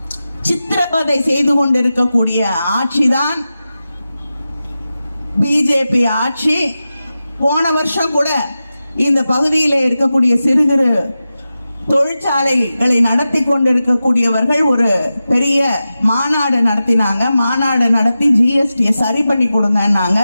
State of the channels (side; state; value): both; inverted; correlation -0.93